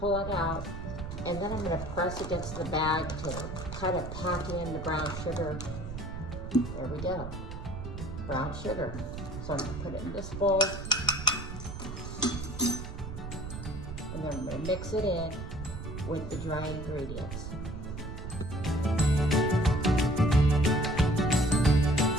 it out, and then I'm going to press against the bag to kind of pack in the brown sugar. There we go, brown sugar. So I'm going to put it in this bowl, and then I'm going to mix it in with the dry ingredients.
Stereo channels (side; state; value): right; noise; rumble, 9 dB below the sound